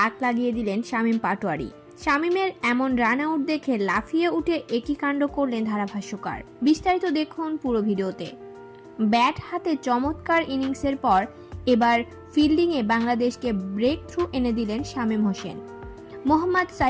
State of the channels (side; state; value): both; identical; correlation 1.00